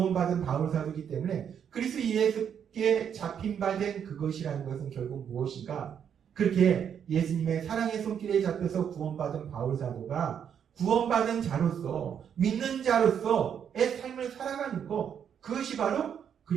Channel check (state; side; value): quieter; left; 8.2 dB